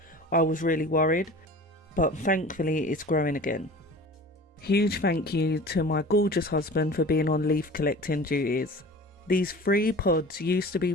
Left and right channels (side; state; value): both; normal; correlation 0.40